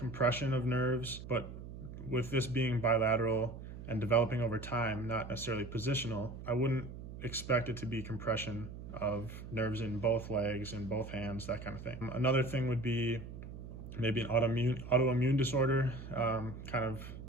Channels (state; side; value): noise; right; hum, 11 dB below the sound